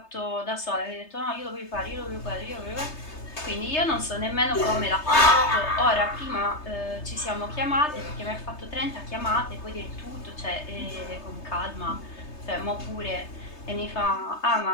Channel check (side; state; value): right; late; 3.3 ms